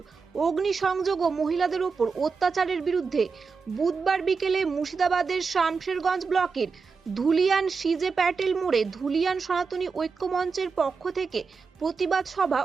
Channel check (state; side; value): quieter; left; 5.1 dB